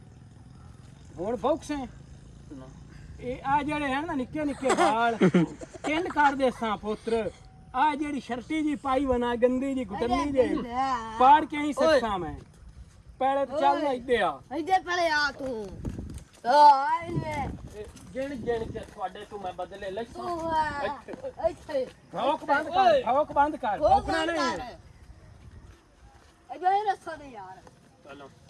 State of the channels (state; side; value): identical; both; correlation 1.00